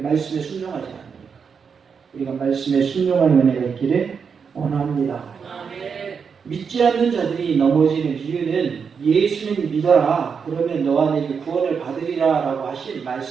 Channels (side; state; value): left; quieter; 6.2 dB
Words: 순종하지 않습니까? 우리가 말씀에 순종하는 은혜가 있기를 원합니다. 믿지 않는 자들이 넘어지는 이유는 예수님 믿어라 그러면 너와 내게 구원을 받으리라 라고 하신